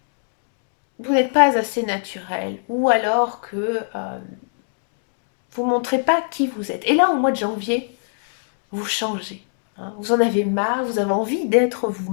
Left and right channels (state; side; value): silent; right; digital silence